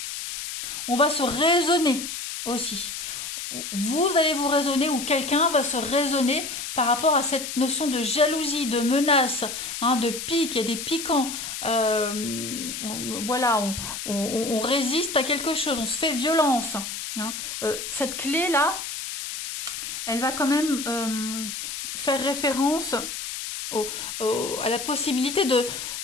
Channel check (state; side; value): noise; left; hiss, 6 dB below the sound